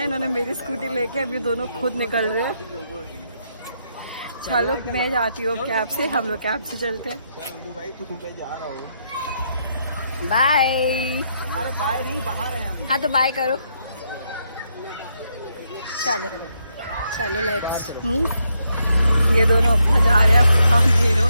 इन्होंने मेरी स्कूटी लेके अभी दोनों खुद निकल रहे हैं। चलो मैं जाती हूँ कैब से, हम लोग कैब से चलते हैं। बाय। अरे बाय नहीं, बाहर है हम। हाँ तो बाय करो। चलो चलो लेट्स मूव। ये दोनों अपना जा रहे हैं, हम तीनों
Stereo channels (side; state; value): both; inverted; correlation -0.78